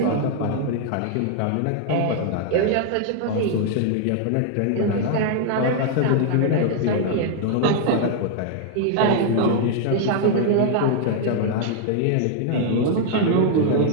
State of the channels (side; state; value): both; different; correlation 0.00